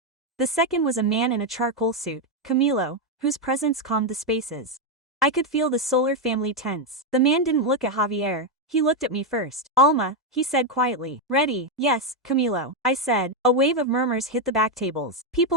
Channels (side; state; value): both; normal; correlation 0.03